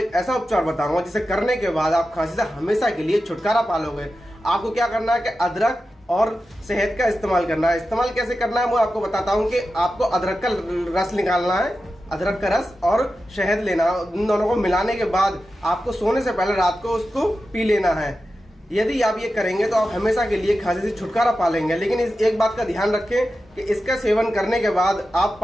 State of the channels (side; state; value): both; normal; correlation 0.92